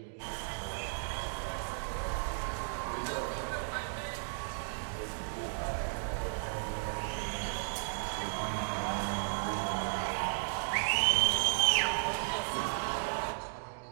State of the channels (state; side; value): silent; left; digital silence